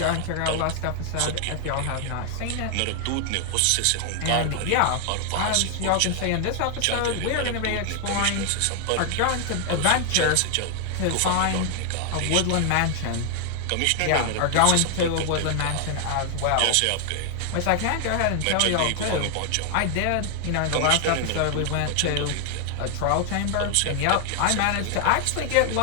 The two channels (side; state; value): both; different; correlation 0.00